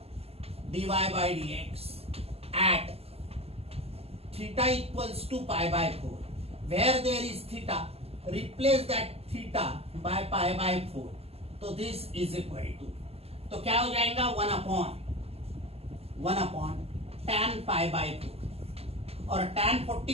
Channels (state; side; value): late; left; 0.29 ms